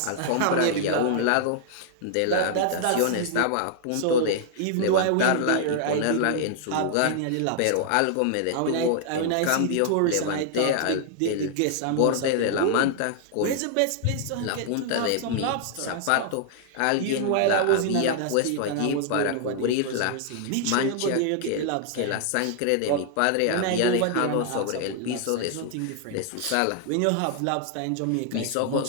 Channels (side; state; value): both; different; correlation -0.01